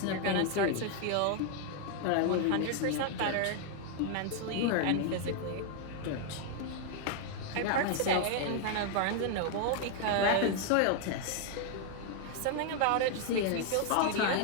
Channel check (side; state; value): both; different; correlation 0.00